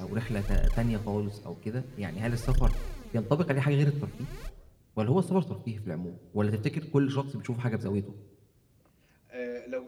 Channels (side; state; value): both; identical; correlation 1.00